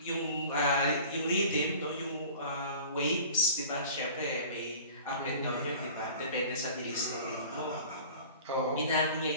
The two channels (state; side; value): inverted; both; correlation -0.42